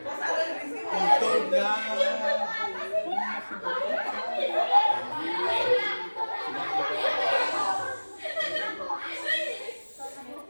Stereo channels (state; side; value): inverted; both; correlation -1.00